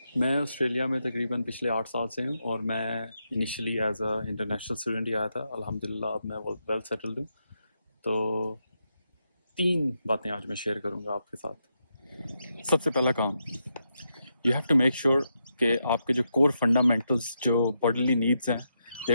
میں آسٹریلیا میں تقریباً پچھلے 8 سال سے ہوں اور میں initially as a international student ہی آیا تھا. الحمدللہ اب میں ویل سیٹلڈ ہوں. تو 3 باتیں آج میں شیئر کروں گا آپ کے ساتھ. سب سے پہلا کام، you have to make sure کہ آپ کے جو کور فنڈامنٹلز جو باڈیلی نیڈز ہیں they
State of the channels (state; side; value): inverted; both; correlation -0.83